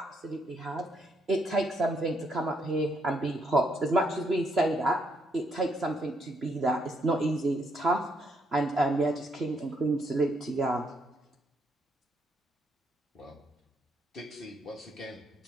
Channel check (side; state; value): both; normal; correlation 0.74